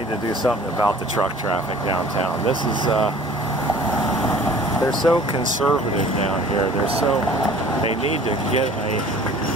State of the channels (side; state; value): both; normal; correlation 0.49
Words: to do something about the truck traffic downtown. This is, they're so conservative down here. They need to get